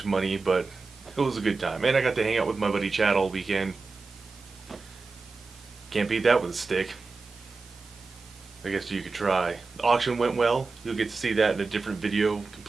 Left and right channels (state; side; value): quieter; left; 4.1 dB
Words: money, but it was a good time. And I got to hang out with my buddy Chad all weekend. Can't beat that with a stick. I guess you could try. The auction went well. You'll get to see that in a different video,